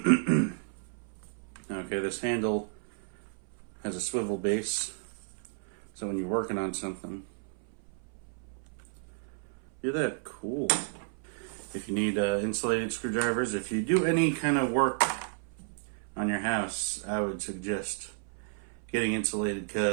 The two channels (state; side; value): silent; left; 56 dB below the other